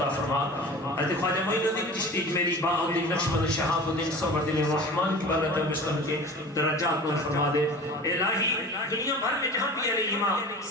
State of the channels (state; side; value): normal; both; correlation 0.38